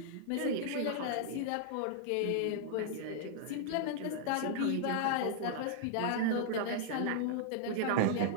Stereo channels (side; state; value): both; different; correlation -0.01